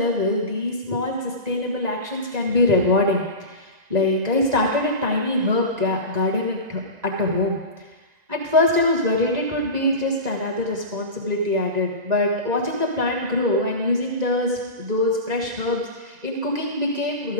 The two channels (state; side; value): late; left; 1.9 ms